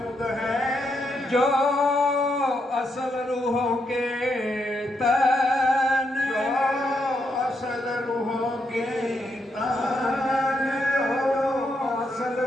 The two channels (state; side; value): normal; both; correlation 0.80